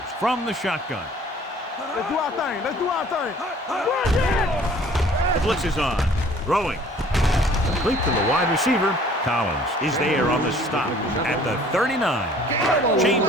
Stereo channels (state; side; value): normal; both; correlation 0.53